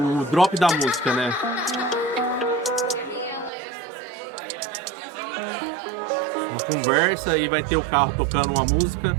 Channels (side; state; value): left; drops out; at 3.5 s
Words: drop da música, né? Uma conversa e vai ter o carro tocando uma música.